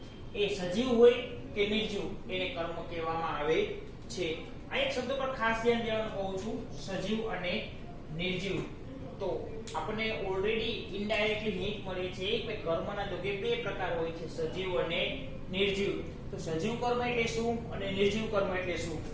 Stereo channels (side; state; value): both; identical; correlation 1.00